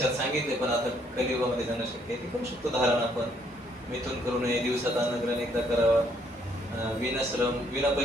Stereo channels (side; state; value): both; normal; correlation 0.68